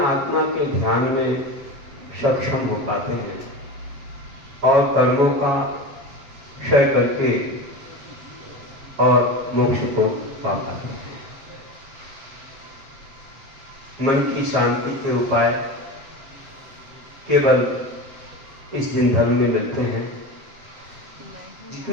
के ध्यान में सक्षम हो पाते हैं और कर्मों का क्षय करके और मोक्ष को पा पाते हैं। मन की शांति के उपाय केवल इस दिन धर्म में मिलते हैं।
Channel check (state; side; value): late; left; 7.7 ms